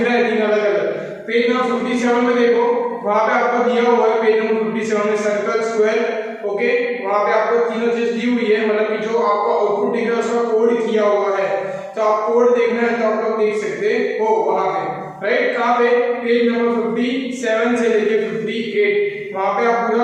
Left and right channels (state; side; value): identical; both; correlation 1.00